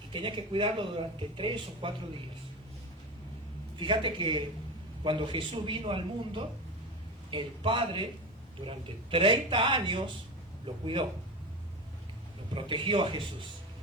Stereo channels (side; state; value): both; normal; correlation 0.24